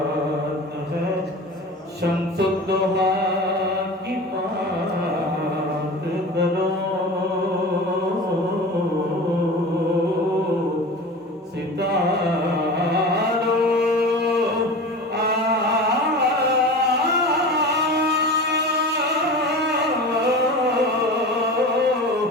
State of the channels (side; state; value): both; normal; correlation 0.33